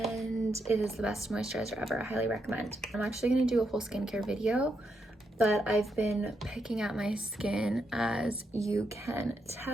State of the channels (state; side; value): normal; both; correlation 0.81